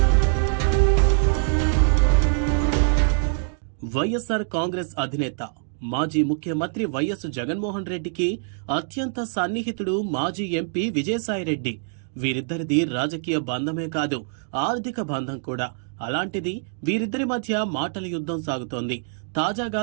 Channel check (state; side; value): silent; left; digital silence